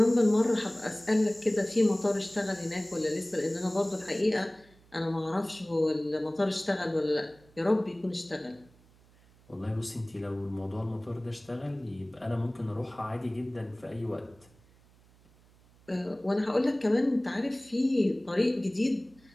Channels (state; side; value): noise; right; hum, 28 dB below the sound